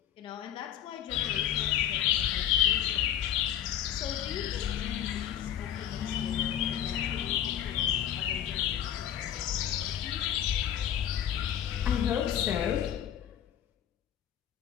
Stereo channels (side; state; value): right; quieter; 10.5 dB